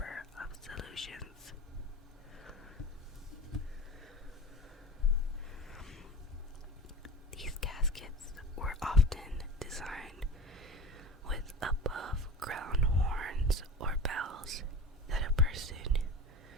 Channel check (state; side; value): normal; both; correlation 0.33